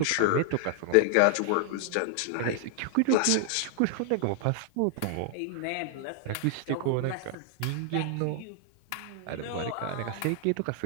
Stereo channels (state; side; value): different; both; correlation 0.00